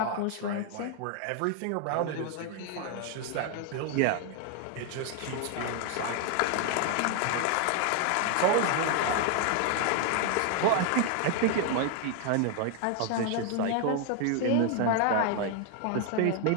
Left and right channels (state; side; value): different; both; correlation 0.00